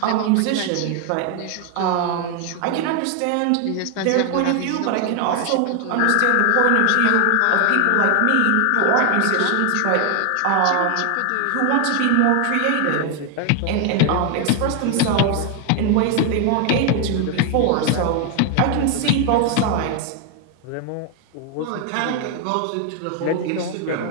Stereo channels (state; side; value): different; both; correlation 0.00